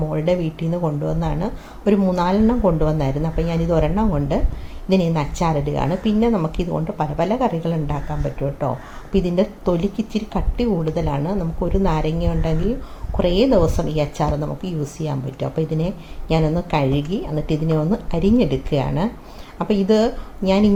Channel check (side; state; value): both; identical; correlation 1.00